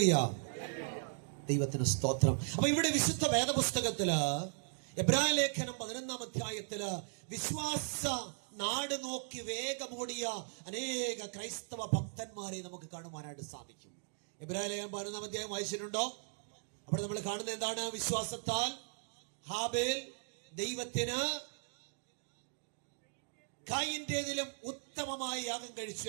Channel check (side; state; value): left; silent; digital silence